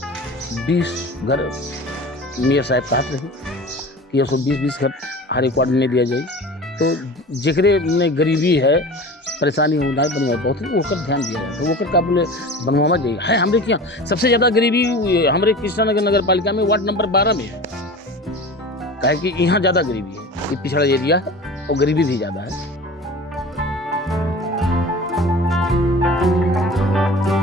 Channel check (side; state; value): both; normal; correlation 0.37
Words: घर मेयर साहब कहते रहे कि 120 घर हर एक वार्ड में दिया जाए। तो जेकरे में गरीबी है, परेशानी हो ना बनवा बहुत ओकर ध्यान दिया जाए, तो ओकर का बोले बनवावा जाइए है। हमारे यहाँ सबसे ज़्यादा गरीबी हमारे कृष्णा नगर नगर पालिका में वार्ड नंबर 12 में है, कहे कि यहाँ ज़्यादा गरीबी है, ये पिछड़ा एरिया है और गरीबी भी ज़्यादा है।